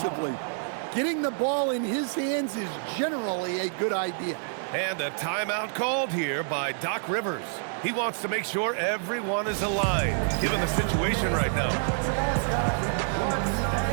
Getting the ball in his hands is generally a good idea. And a timeout called here by Doc Rivers. He wants to make sure everyone is aligned, given the situation right now.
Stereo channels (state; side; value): silent; left; 60 dB below the other